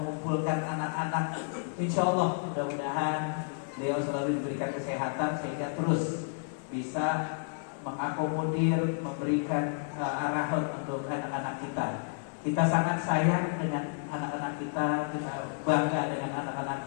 anak-anak. Insya Allah mudah-mudahan beliau selalu diberikan kesehatan sehingga terus bisa mengakomodir, memberikan arahan untuk anak-anak kita. Kita sangat sayang dengan anak-anak kita, kita bangga dengan anak-anak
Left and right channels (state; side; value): silent; right; digital silence